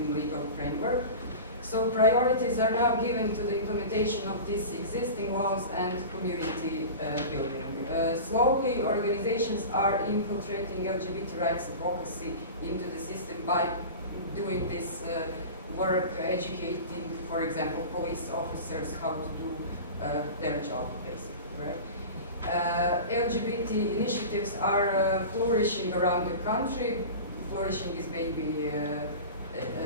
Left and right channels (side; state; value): both; inverted; correlation -0.32